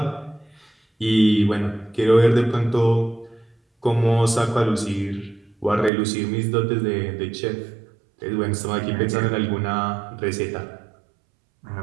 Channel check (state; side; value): drops out; left; at 5.9 s